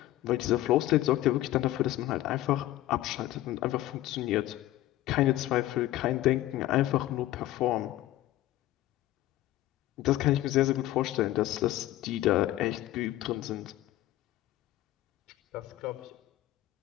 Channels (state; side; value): quieter; right; 15.3 dB